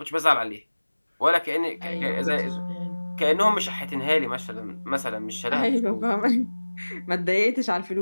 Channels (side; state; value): both; inverted; correlation -1.00